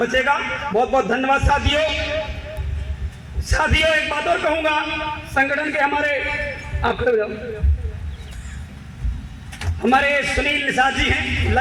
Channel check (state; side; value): identical; both; correlation 1.00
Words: बहुत बहुत धन्यवाद साथियों। साथियों एक बात और कहूंगा, संगठन के हमारे सुनील निषाद जी हैं,